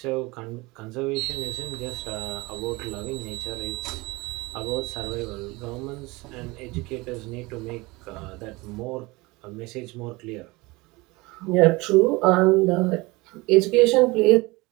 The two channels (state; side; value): quieter; left; 23.3 dB